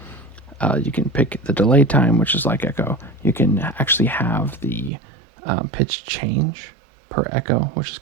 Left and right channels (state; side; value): drops out; left; at 4.9 s